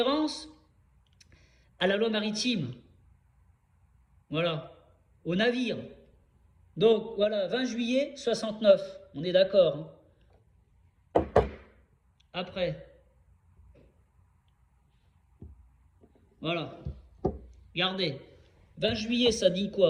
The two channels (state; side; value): identical; both; correlation 1.00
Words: à la loi maritime. Voilà, au navire. Donc, voilà, 20 juillet 69, on est d'accord. Hein. Après. Voilà. Regardez. 20 juillet, ça dit